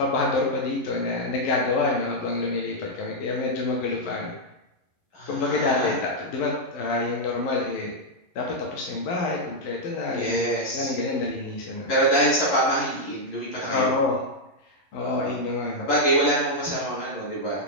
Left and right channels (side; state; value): right; late; 11 ms